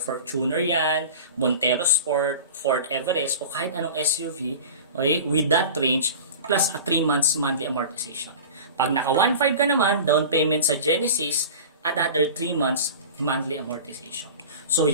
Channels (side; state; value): both; inverted; correlation -0.35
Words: yan, Montero Sport, Ford Everest, o kahit anong SUV, okay, with that range, plus a 3 months monthly amortization. Pag naka 1.5 ka naman, down payment sa Genesis, another 3 months monthly amortization. So,